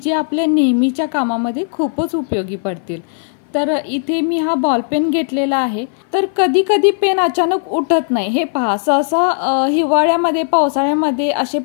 आपल्या नेहमीच्या कामामध्ये खूपच उपयोगी पडतील। तर इथे मी हा बॉल पेन घेतलेला आहे। तर कधी कधी पेन अचानक उठत नाही, हे पहा। सहसा हिवाळ्यामध्ये पावसाळ्यामध्ये असे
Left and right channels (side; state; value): right; silent; 58 dB below the other